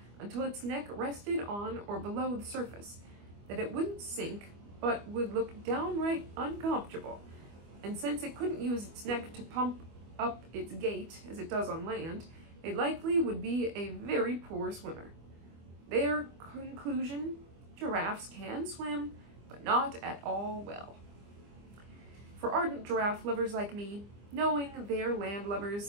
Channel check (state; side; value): late; left; 25 ms